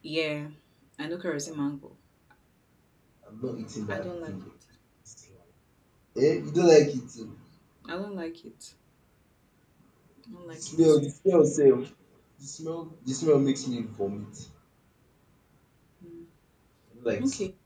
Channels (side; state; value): both; identical; correlation 1.00